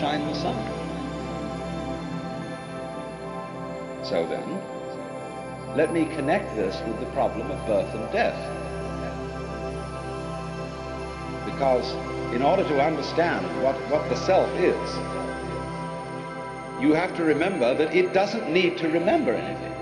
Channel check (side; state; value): both; identical; correlation 1.00